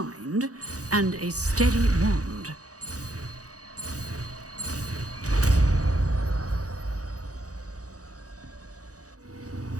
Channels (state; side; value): late; left; 0.67 ms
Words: and a steady wand.